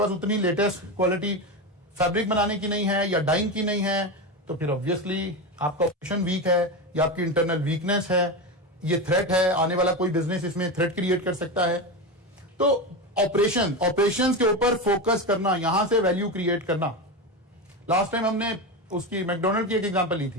उतनी लेटेस्ट क्वालिटी फैब्रिक बनाने की नहीं है या डाइंग की नहीं है, तो फिर ऑब्वियसली आपका ऑपरेशन वीक है या आपकी इंटरनल वीकनेस है, ये थ्रेट है, आने वाला कोई बिजनेस इसमें थ्रेट क्रिएट कर सकता है। तो ऑपरेशंस के ऊपर फोकस करना, यहां से वैल्यू क्रिएट करना। लास्ट टाइम हमने उसकी मैकडोनल्ड की एक एग्जांपल ली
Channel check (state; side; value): normal; both; correlation 0.18